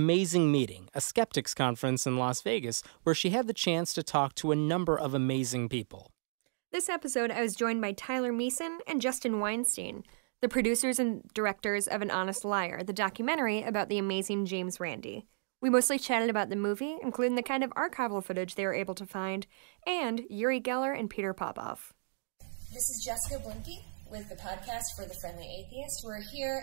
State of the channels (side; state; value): left; silent; digital silence